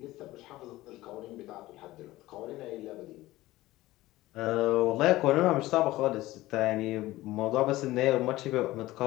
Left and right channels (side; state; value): right; quieter; 17.4 dB